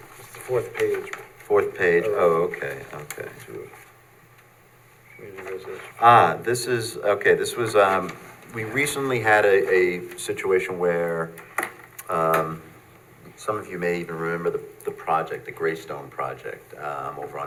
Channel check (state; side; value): identical; both; correlation 1.00